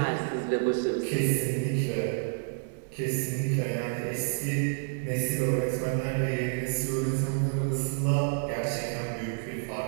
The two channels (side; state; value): left; silent; 58 dB below the other